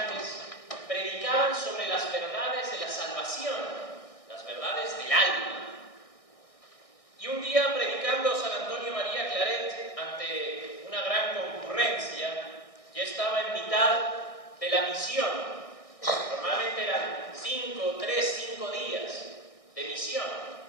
predicaban sobre las verdades de la salvación, las verdades del alma. Y un día, predicando San Antonio María Claret ante una gran concurrencia, ya estaba en mitad de la misión. Normalmente eran 5 días de misión.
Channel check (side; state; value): right; late; 1.6 ms